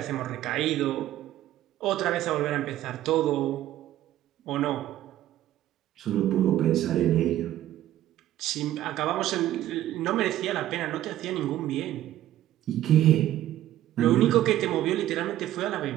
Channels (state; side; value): quieter; left; 13.4 dB